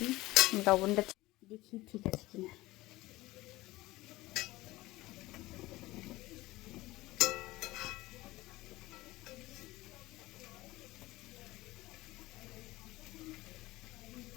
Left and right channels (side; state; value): right; quieter; 19.0 dB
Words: লবণটা দেখি ঠিক আছে কিনা।